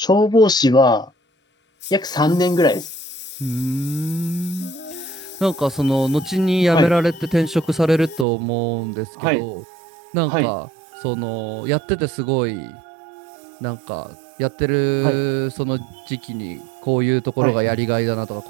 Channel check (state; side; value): drops out; left; at 8.2 s